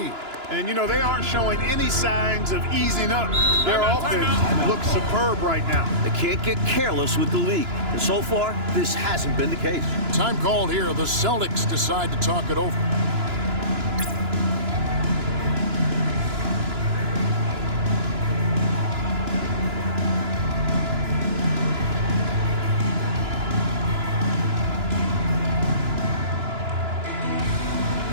And, you know, they aren't showing any signs of easing up. Their offense looks superb right now. They can't get careless with the league. And so far, this hasn't been the case. Time called here. The Celtics decide to talk it over.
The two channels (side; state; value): left; late; 2.9 ms